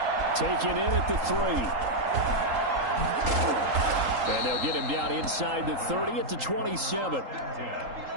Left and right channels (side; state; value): left; late; 3.8 ms